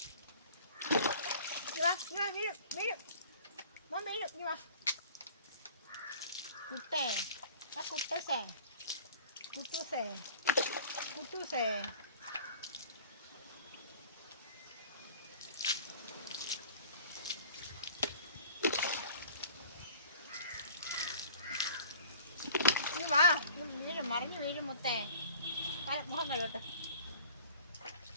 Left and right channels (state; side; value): inverted; both; correlation -0.47